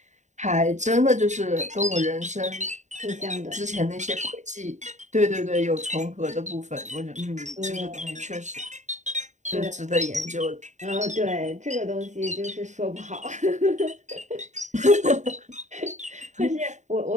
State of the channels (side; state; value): left; late; 0.34 ms